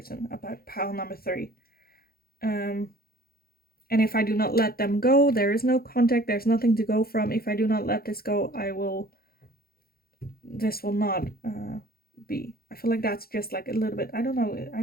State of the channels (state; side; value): late; right; 0.44 ms